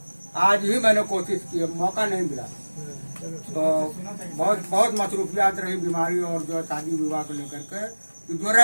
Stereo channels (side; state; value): both; inverted; correlation -1.00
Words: आज ही मैंने कोशिश की, मौका नहीं मिला। तो बहुत मसरूफियात रही, बीमारी और जो शादी विवाह को लेकर के। तो जो